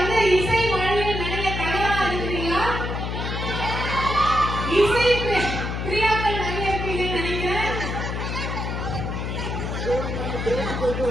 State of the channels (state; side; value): noise; left; hum, 3 dB below the sound